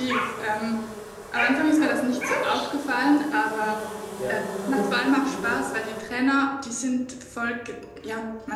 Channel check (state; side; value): identical; both; correlation 1.00